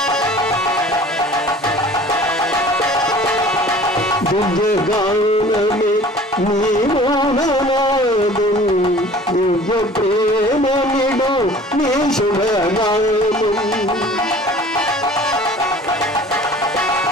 దివ్యగానమే నీ మౌననాదం, దివ్య ప్రేమ నిడు నీ శుభనామం.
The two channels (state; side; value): normal; both; correlation 0.47